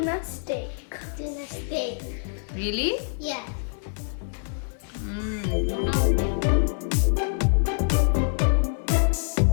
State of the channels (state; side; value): silent; right; 61 dB below the other